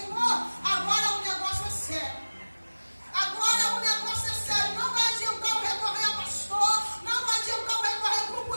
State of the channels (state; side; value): inverted; both; correlation -1.00